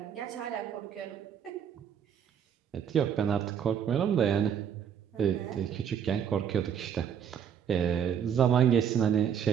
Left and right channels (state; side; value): quieter; left; 8.4 dB